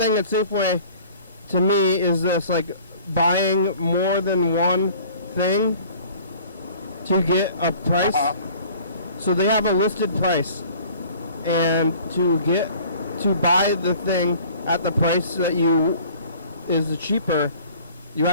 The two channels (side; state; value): both; inverted; correlation -0.50